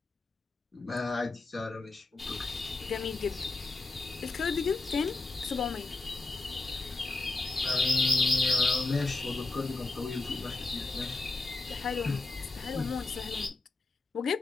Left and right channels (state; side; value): quieter; right; 3.4 dB